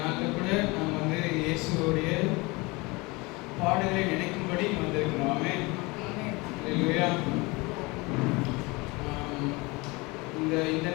கூட நாம் வந்து இயேசுவோடைய பாடுகளை நினைக்கும்படி வந்திருக்கிறோம். ஆமென். Hallelujah. இந்த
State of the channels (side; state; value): right; quieter; 25.1 dB